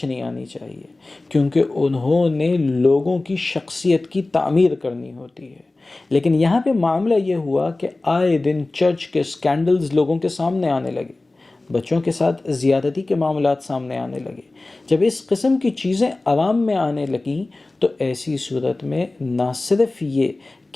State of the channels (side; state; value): right; quieter; 3.0 dB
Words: نہیں آنی چاہیے، کیونکہ انہوں نے لوگوں کی شخصیت کی تعمیر کرنی ہوتی ہے۔ لیکن یہاں پہ معاملہ یہ ہوا کہ آئے دن چرچ کے سکینڈلز لوگوں کے سامنے آنے لگے، بچوں کے ساتھ زیادتی کے معاملات سامنے آنے لگے۔ جب اس قسم کی چیزیں عوام میں آنے لگیں تو ایسی صورت میں نہ صرف یہ